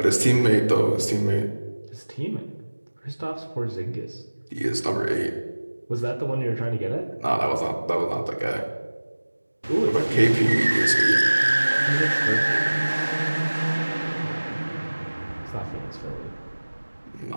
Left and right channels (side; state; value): both; inverted; correlation -1.00